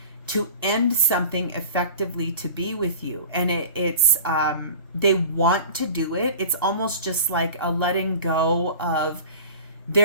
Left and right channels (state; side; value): inverted; both; correlation -0.39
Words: to end something effectively to be with you. And it's they want to do it. It's almost just like a letting go of